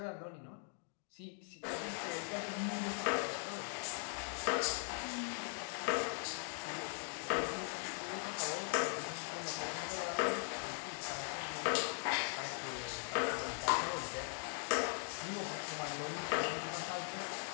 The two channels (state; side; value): silent; right; 51 dB below the other